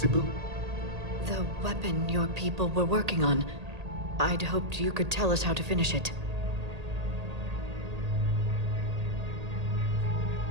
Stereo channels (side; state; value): left; late; 1.8 ms